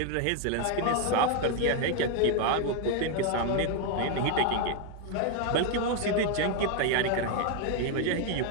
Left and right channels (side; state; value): both; different; correlation 0.01